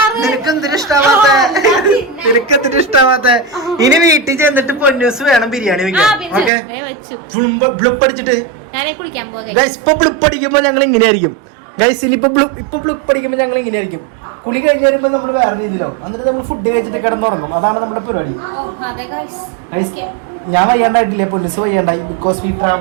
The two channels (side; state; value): left; drops out; at 6.5 s